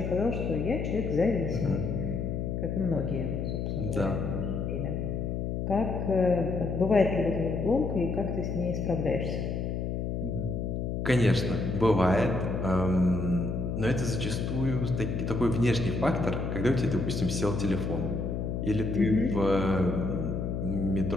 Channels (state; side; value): noise; left; hum, 2 dB below the sound